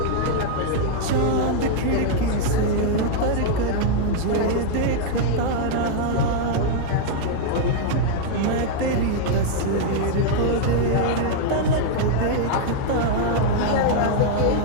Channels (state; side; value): different; both; correlation -0.01